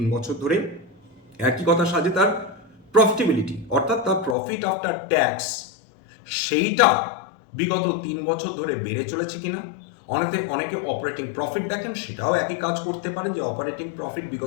বছর ধরে। একই কথা সাজে তার প্রফিটেবিলিটি, অর্থাৎ তার প্রফিট আফটার ট্যাক্স, সেইটা বিগত 3 বছর ধরে বেড়ে চলেছে কিনা। অনেকে অপারেটিং প্রফিট দেখেন, সেটাও একই কাজ করতে পারেন যে অপারেটিং প্রফিট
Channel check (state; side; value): drops out; right; at 4.4 s